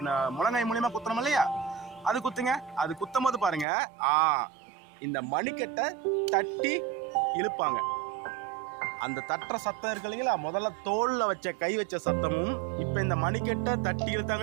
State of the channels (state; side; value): drops out; left; at 3.7 s